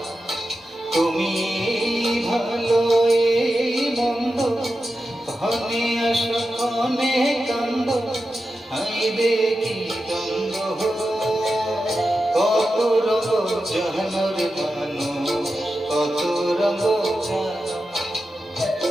তুমি ভালো এই মন্দ, ক্ষণে আসো ক্ষণে কান্দ, হাইরে কি দ্বন্দ্ব। কত রঙ জাহানোর মানুষ কত রঙ জানো,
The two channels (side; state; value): both; normal; correlation 0.91